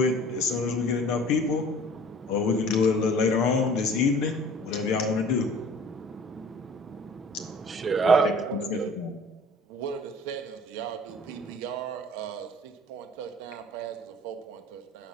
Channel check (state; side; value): normal; both; correlation 0.47